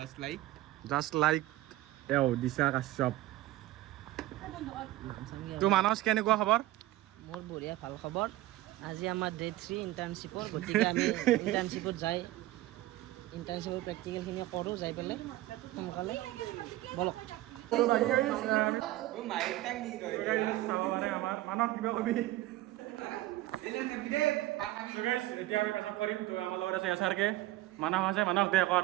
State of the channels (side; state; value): left; quieter; 16.5 dB